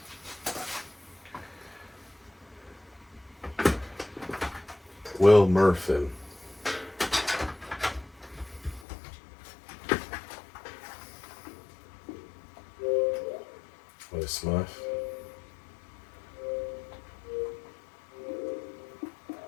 Will Murphin. Hello, Smurf.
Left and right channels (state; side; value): drops out; right; at 8.8 s